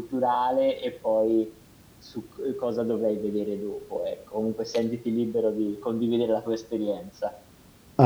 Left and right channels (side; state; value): both; identical; correlation 1.00